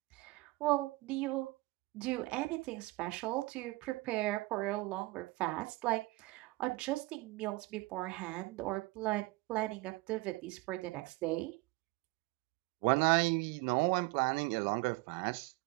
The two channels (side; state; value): left; quieter; 22.2 dB